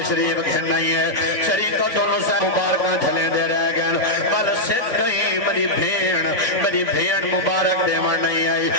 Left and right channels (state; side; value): late; right; 3.5 ms